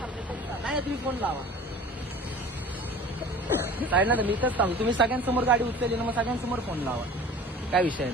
नाही तुम्ही फोन लावा साईड ना. मी इथंच सांगू, तुम्ही सगळ्यांसमोर गाडी उचलली ना, मग सगळ्यांसमोर फोन लावा, काय विषय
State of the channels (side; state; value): both; normal; correlation 0.42